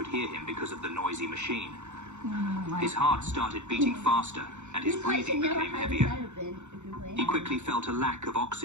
hear him because of the noisy machine. His heart started beating faster, and his breathing became heavier. He quickly felt a lack of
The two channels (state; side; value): late; left; 0.83 ms